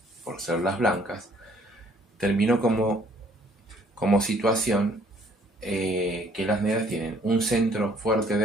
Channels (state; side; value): normal; both; correlation 0.61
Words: por ser las blancas, terminó como situación que las negras tienen un centro fuerte